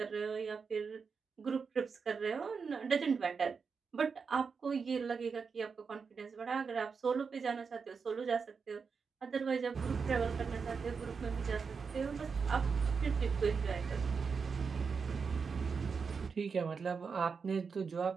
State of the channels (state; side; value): quieter; left; 5.5 dB